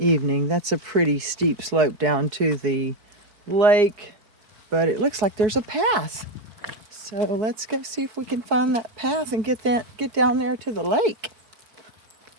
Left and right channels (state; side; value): late; left; 4.7 ms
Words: That's a pretty steep slope down to the lake, but it looks like there's a path. So let's go see if we can find that path and get down there to the lake.